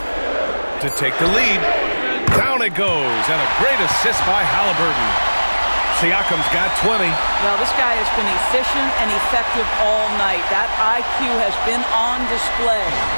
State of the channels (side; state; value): both; inverted; correlation -1.00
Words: To take the lead. Down it goes. And a great assist by Halliburton. Siakam's got 20. Well, this guy has been efficient and effective all night. That IQ has been on display.